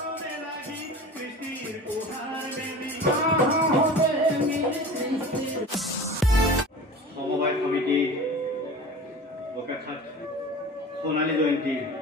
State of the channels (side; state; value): both; normal; correlation 0.37